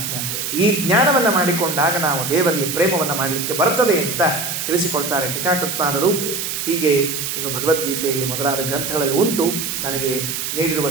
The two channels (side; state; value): right; noise; hiss, 3 dB below the sound